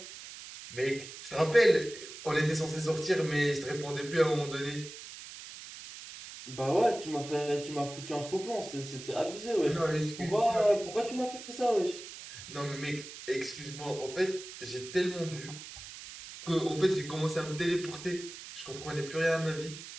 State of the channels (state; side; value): noise; right; hiss, 13 dB below the sound